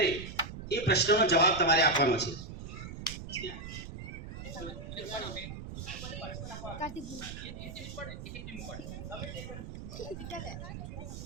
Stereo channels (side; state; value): right; noise; rumble, 9 dB below the sound